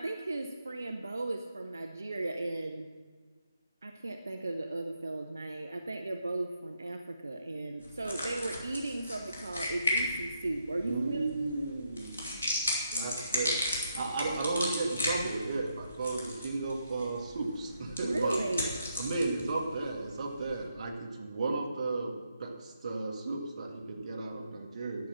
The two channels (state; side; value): inverted; both; correlation -0.79